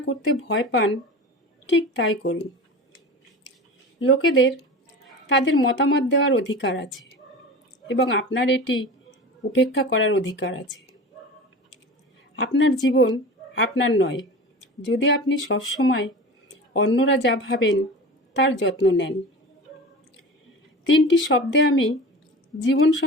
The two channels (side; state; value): both; normal; correlation 0.33